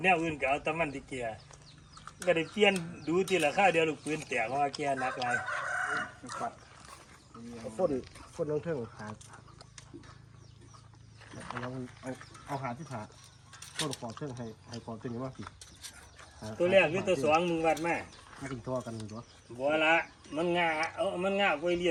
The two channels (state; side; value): identical; both; correlation 1.00